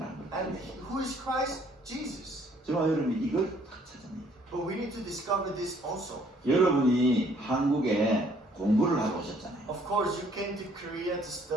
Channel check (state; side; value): normal; both; correlation 0.62